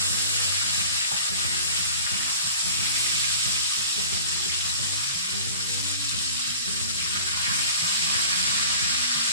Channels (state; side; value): inverted; both; correlation -0.42